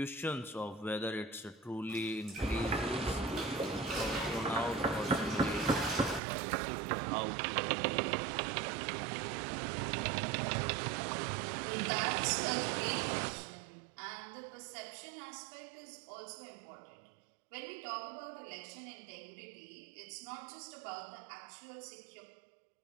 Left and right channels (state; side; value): drops out; left; at 6.2 s